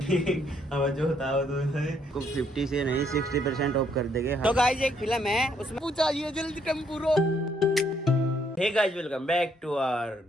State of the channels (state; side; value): normal; both; correlation 0.70